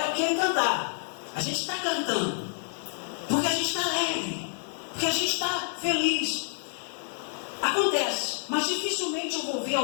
aquele cantar. A gente está cantando, porque a gente está alegre, porque a gente está feliz. Acontece, mas dificilmente eu vou ver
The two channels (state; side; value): silent; right; digital silence